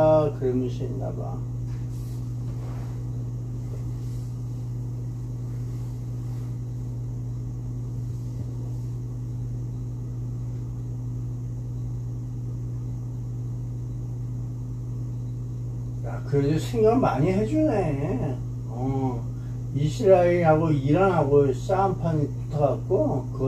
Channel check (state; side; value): identical; both; correlation 1.00